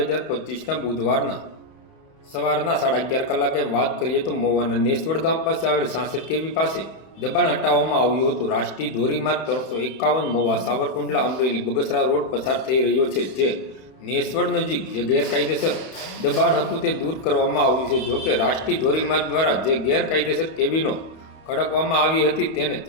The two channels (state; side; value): late; right; 31 ms